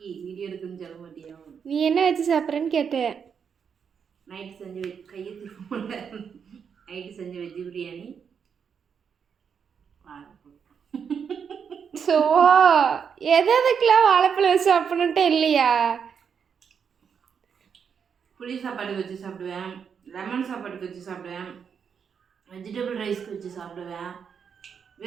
எடுக்குன்னு சொல்ல மாட்டியா? நீ என்ன வச்சு சாப்பிட்றேன்னு கேட்டேன். நைட்டு செஞ்ச கையை திரும்ப நைட்டு செஞ்ச வெஜ் பிரியாணி. ஸோ எதுக்கெல்லாம் வாழைப்பழம் வச்சு சாப்பிடணுன்ட்டு இல்லையா? புளி சாப்பாட்டுக்கு வச்சு சாப்பிடுவேன், லெமன் சாப்பாட்டுக்கு வச்சு சாப்பிடுவேன், வெஜிடபிள் ரைஸ்க்கு வச்சு சாப்பிடுவேன்.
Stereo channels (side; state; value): left; quieter; 6.9 dB